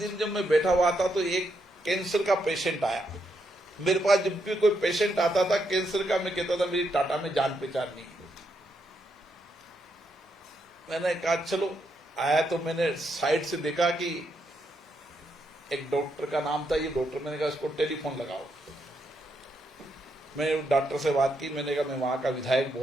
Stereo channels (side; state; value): both; normal; correlation 0.79